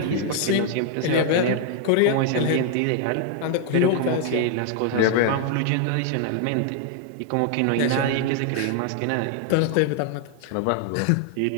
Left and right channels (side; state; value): both; different; correlation 0.00